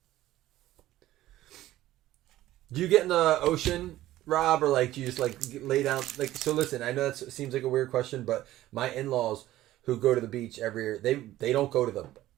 Do you get in the ocean, Rob, or like do you just like lay down? Like, so listen, I know that seems like a weird question, but my in-laws who go to the beach every year, they don't go to the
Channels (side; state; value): left; quieter; 14.9 dB